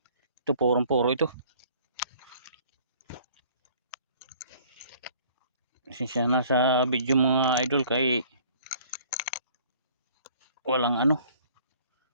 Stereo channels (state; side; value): inverted; both; correlation -0.55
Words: Ito purong-puro ito. Siya nasa video mga idol kay walang ano,